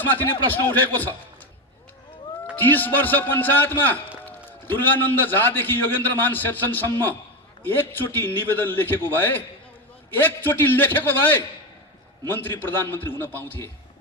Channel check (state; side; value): normal; both; correlation 0.14